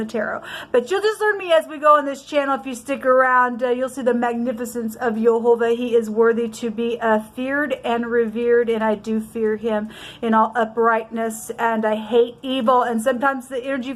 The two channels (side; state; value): both; identical; correlation 1.00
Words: tarot. But you'll just learn me as we go on this channel. If you stick around, you'll see the magnificence of Jehovah. He is worthy to be feared and revered, and I do fear him in all uprightness, and I hate evil. And sometimes the energy